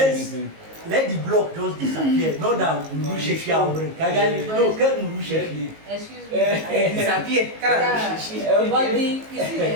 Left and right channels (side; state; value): left; late; 19 ms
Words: let the block just disappear. Not that excuse me. Disappear. But you see,